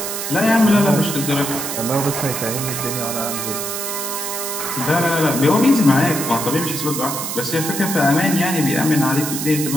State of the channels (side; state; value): right; noise; hiss, 4 dB below the sound